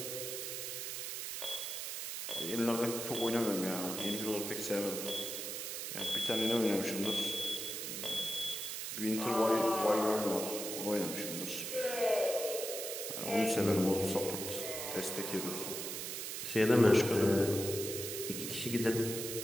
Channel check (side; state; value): right; noise; hiss, 5 dB below the sound